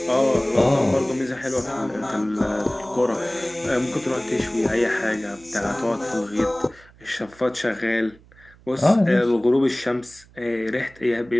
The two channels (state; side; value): noise; right; hum, 26 dB below the sound